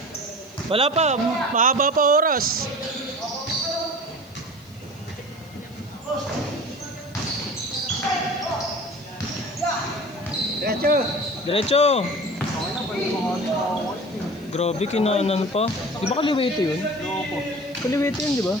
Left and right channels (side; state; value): left; noise; hiss, 27 dB below the sound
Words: Wala pa, mahaba pa oras. Diretso. Diretso. Grabe, kinanan pa. Di ba kaliwete yun? Kaliwete yun, di ba?